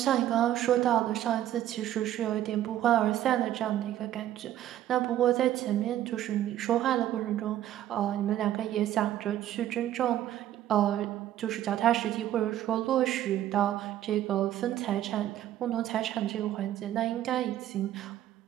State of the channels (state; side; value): quieter; left; 12.4 dB